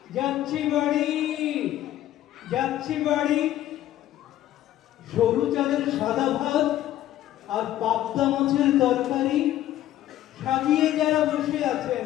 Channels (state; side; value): quieter; right; 13.1 dB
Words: যাচ্ছি বাড়ি, যাচ্ছি বাড়ি। সরু চালের সাদা ভাত আর পাবদা মাছের তরকারি সাজিয়ে যারা বসে আছেন